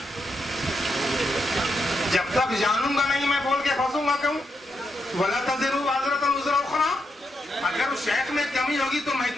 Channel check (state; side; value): normal; both; correlation 0.82